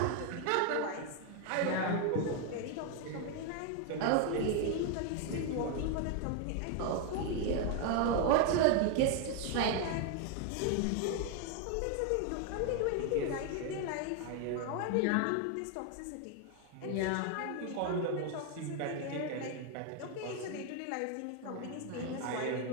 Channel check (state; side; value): different; both; correlation 0.01